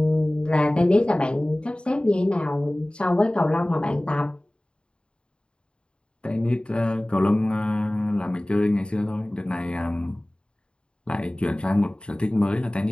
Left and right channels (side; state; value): right; late; 0.052 ms